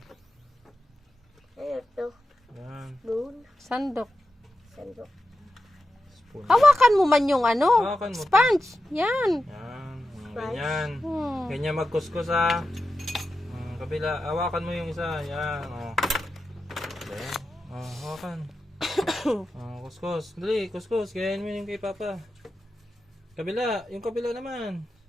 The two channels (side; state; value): both; normal; correlation 0.90